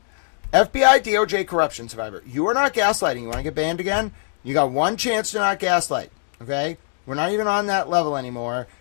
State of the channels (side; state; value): right; silent; digital silence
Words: FBI DOJ corruption survivor. You are not gaslighting. You want to get banned again? You got one chance to not gaslight. Okay? We're not even on that level anymore.